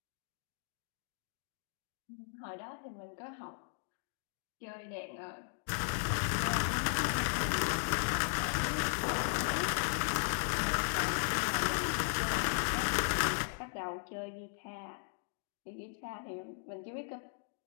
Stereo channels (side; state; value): right; silent; digital silence